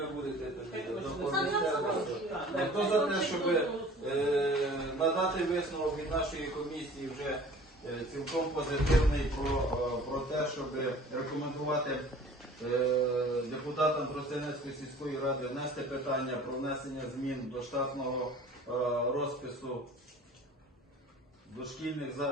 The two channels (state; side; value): normal; both; correlation 0.47